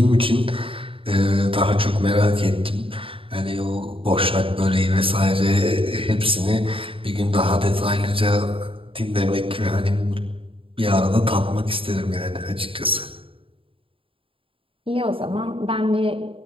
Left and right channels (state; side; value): late; left; 0.26 ms